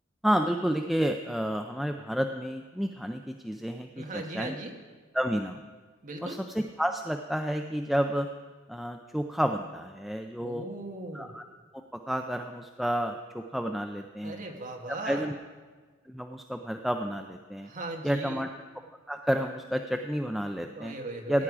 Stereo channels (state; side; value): normal; both; correlation 0.88